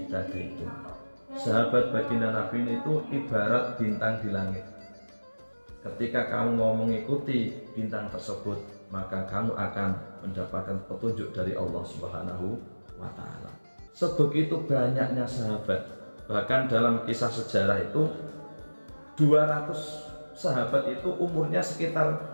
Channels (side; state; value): both; inverted; correlation -1.00